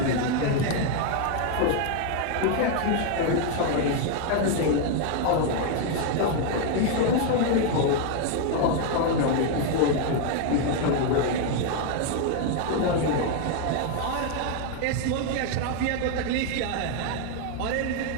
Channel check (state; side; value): different; both; correlation 0.00